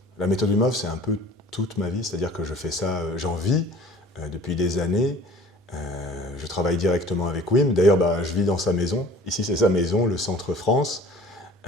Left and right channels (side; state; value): both; normal; correlation 0.48